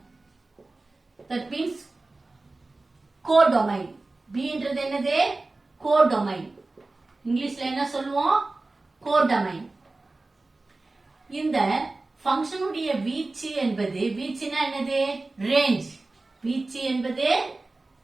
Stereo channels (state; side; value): quieter; left; 3.2 dB